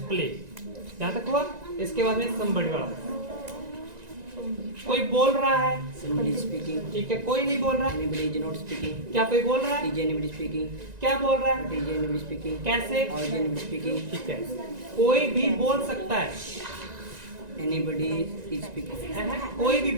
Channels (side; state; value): left; late; 1.9 ms